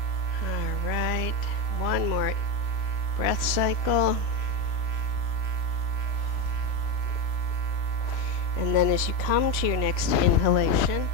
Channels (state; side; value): late; right; 3.0 ms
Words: All right. One more breath cycle. And then as you come to your next inhalation,